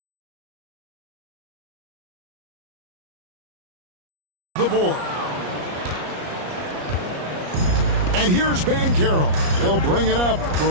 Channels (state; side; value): late; left; 34 ms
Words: The board. And here's Banchero. He'll bring it up for